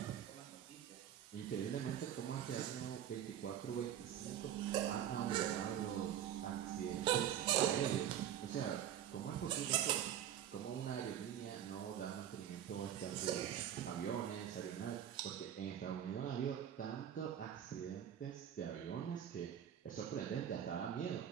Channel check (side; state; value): left; quieter; 10.1 dB